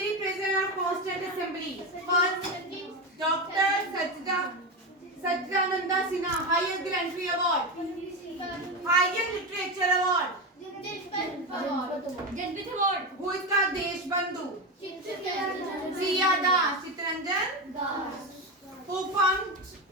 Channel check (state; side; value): normal; both; correlation 0.16